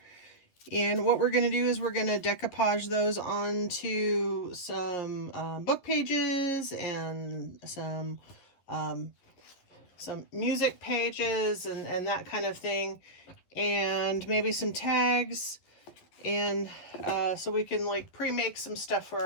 And what we're going to do is we're going to decoupage those onto some book pages and some music pages and that kind of thing. And maybe some tags. And so we can like pre-make some stuff for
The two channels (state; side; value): late; right; 11 ms